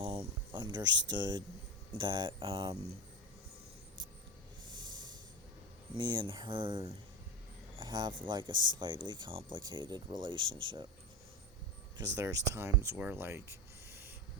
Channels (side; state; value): both; normal; correlation 0.20